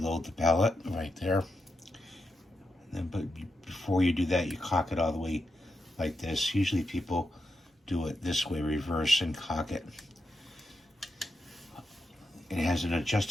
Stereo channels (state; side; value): normal; both; correlation 0.86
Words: the pallet right there. And then, but before you do that, you cock it all the way like this. Usually people do it this way, reverse, and cock it. It has an